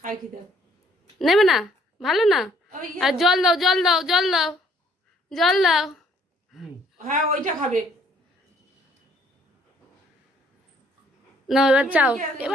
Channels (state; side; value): normal; both; correlation 0.63